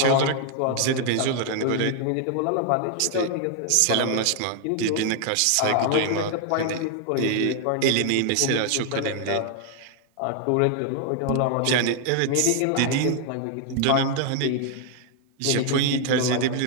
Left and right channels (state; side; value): different; both; correlation 0.00